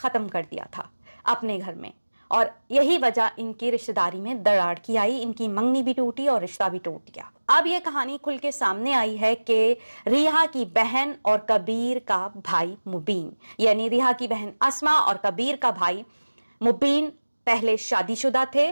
कर दिया था अपने घर में और यही वजह इनकी रिश्तेदारी में दरार की आई। इनकी मंगनी भी टूटी और रिश्ता भी टूट गया। अब ये कहानी खुल के सामने आई है कि रिहा की बहन और कबीर का भाई मुबीन, यानी रिहा की बहन अस्मा और कबीर का भाई मुबीन पहले शादीशुदा थे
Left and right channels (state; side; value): inverted; both; correlation -1.00